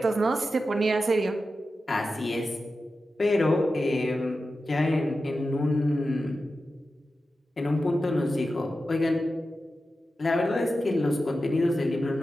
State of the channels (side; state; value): both; normal; correlation 0.92